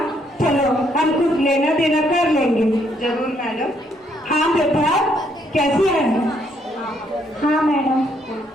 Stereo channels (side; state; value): both; normal; correlation 0.71